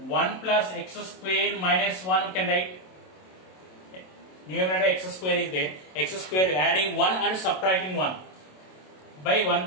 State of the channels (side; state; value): right; late; 27 ms